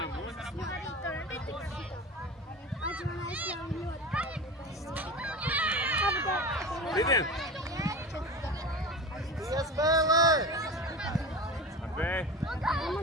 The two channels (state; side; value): normal; both; correlation 0.30